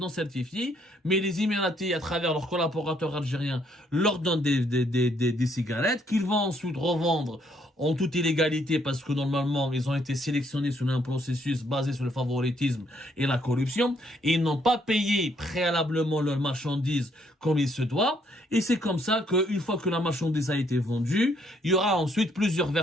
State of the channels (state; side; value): normal; both; correlation 0.69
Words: certifiés, mais les Émiratis, à travers leurs collaborateurs algériens, leur donnent des cigarettes qu'ils vont ensuite revendre en toute illégalité parce que normalement, ils ont été sélectionnés sur un processus basé sur le favoritisme et la corruption, et ils n'ont pas payé préalablement leurs marchandises comme il se doit, et c'est comme ça qu'une fois que la marchandise a été vendue, il y aura ensuite plusieurs